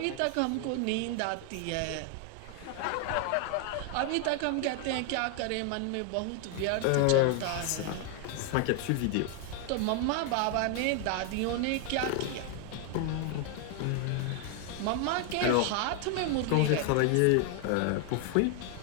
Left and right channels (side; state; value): both; different; correlation 0.00